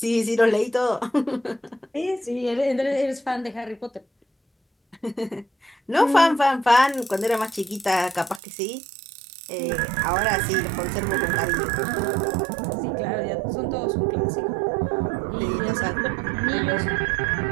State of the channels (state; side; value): drops out; left; at 8.4 s